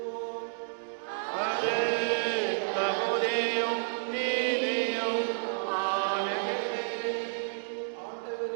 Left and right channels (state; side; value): silent; left; digital silence